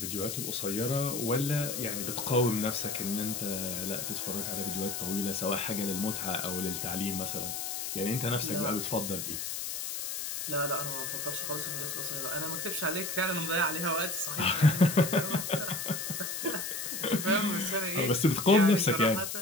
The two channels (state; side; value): noise; left; hiss, 4 dB below the sound